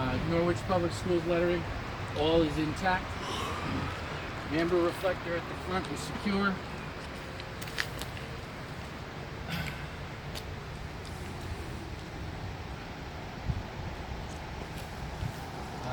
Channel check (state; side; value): identical; both; correlation 1.00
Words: Norwich Public Schools lettering, all is intact. Amber reflector at the front is secure.